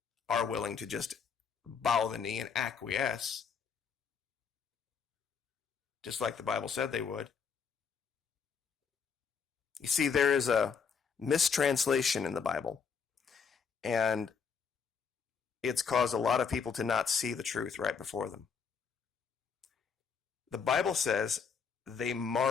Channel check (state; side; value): quieter; right; 6.2 dB